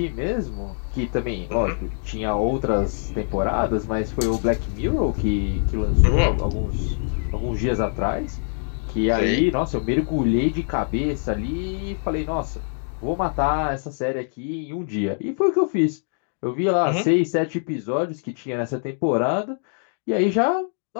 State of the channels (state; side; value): silent; right; 63 dB below the other